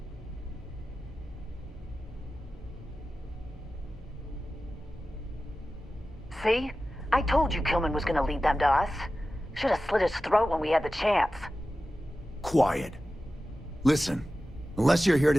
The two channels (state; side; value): normal; both; correlation 0.94